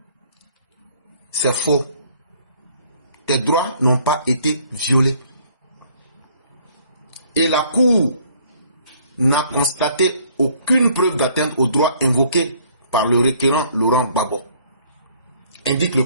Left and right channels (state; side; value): inverted; both; correlation -0.60